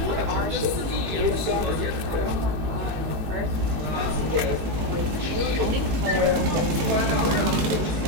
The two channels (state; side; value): late; left; 18 ms